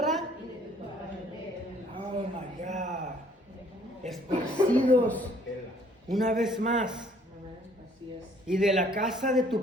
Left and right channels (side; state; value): both; normal; correlation 0.60